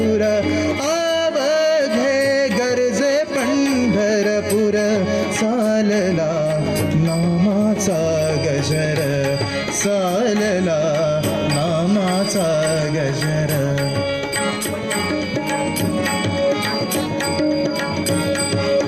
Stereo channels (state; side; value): identical; both; correlation 1.00